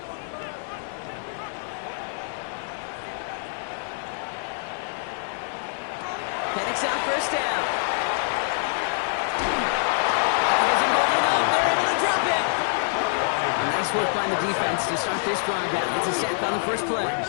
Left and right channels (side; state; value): right; silent; 59 dB below the other